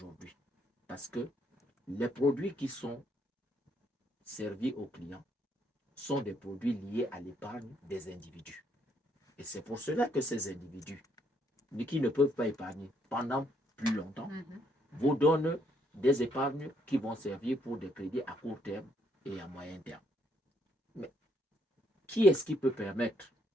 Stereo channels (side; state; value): both; normal; correlation 0.71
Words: parce que les produits qui sont servis aux clients sont des produits liés à l'épargne des individus. Et c'est pour cela que ces individus, qui ne peuvent pas épargner pendant plus longtemps, vous donnent des épargnes qui vont servir pour des crédits à court terme et à moyen terme. Mais qui est-ce qui peut permettre